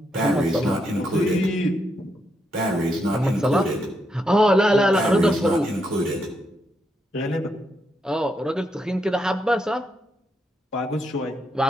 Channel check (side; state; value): both; normal; correlation 0.80